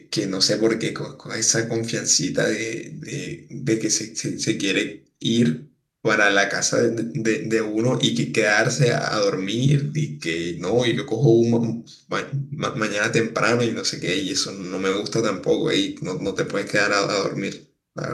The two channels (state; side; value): identical; both; correlation 1.00